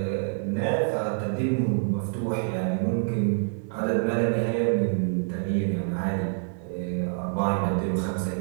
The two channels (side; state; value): left; silent; digital silence